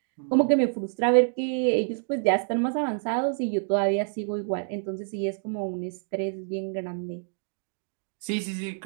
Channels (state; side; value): silent; left; 60 dB below the other